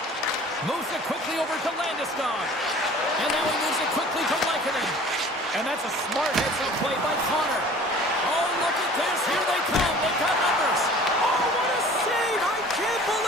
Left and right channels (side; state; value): both; normal; correlation 0.47